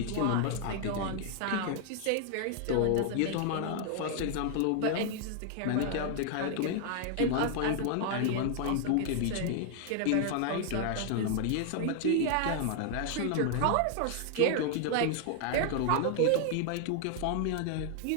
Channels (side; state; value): both; different; correlation 0.00